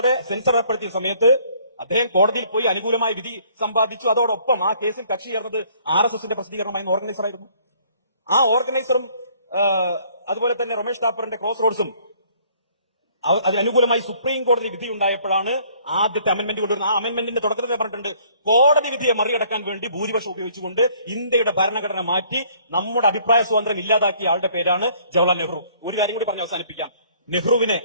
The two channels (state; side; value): inverted; both; correlation -0.60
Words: സെൻസർ ഏർപ്പെടുത്തിയ സമയത്ത് അദ്ദേഹം കോടതിയിൽ പോയി അനുകൂലമായ വിധി സമ്പാദിച്ചു. അതോടൊപ്പം ആ കേസിൽ കക്ഷി ചേർന്നത് RSSന്റെ പ്രസിദ്ധീകരണമായിരുന്ന ഓർഗനൈസർ ആയിരുന്നു. ആ ഓർഗനൈസറും അതുപോലെ തന്നെ റൊമേഷ് താപ്പറിന്റെ ക്രോസ് റോഡ്സും അതിനനുകൂലമായി സുപ്രീം കോടതി വിധി ഉണ്ടായപ്പോഴാണ് ആദ്യത്തെ അമെന്റ്മെന്റ് കൊണ്ടുവരുന്നത്. ആ അമെന്റ്മെന്റിന്റെ തുടക്കത്തിൽ പറഞ്ഞിട്ടുണ്ട്, കോടതി വിധിയെ മറികടക്കാൻ വേണ്ടി ഭൂരിപക്ഷം ഉപയോഗിച്ചുകൊണ്ട് ഇന്ത്യയുടെ ഭരണഘടന മാറ്റി നമ്മുടെ അഭിപ്രായ സ്വാതന്ത്ര്യം ഇല്ലാതാക്കിയ ആളുടെ പേരാണ് ജവഹർലാൽ നെഹ്റു. ഒരു കാര്യം കൂടി പറഞ്ഞ് അവസാനിപ്പിക്കാം. നെഹ്റുവിനെ